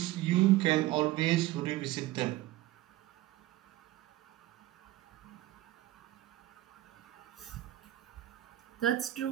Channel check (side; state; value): left; quieter; 16.2 dB